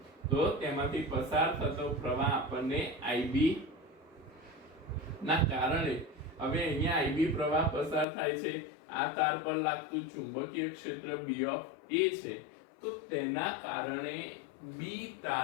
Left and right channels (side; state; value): right; drops out; at 8.1 s